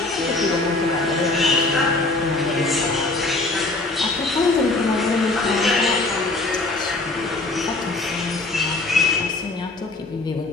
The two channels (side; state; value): right; quieter; 3.1 dB